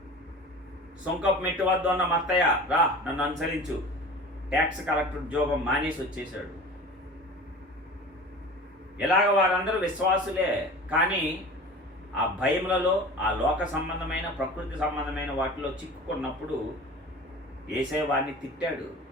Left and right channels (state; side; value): normal; both; correlation 0.38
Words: సుంకపు మెట్టు వద్ద ఉన్న మత్తయ్య, రా నన్ను అనుసరించు, ట్యాక్స్ కలెక్టర్ ఉద్యోగం మానేసి వచ్చేసాడు. ఇలాగ వారందరూ విశ్వాసులే, కానీ ఆ భయములలో, ఆ లోక సంబంధమైన, ప్రకృతి సంబంధమైన వాటిలో చిక్కుకున్నప్పుడు యేసయ్య వారిని తిట్టాడు.